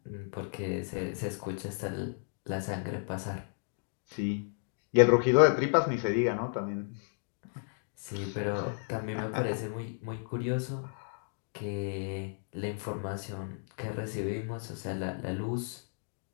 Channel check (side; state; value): right; silent; digital silence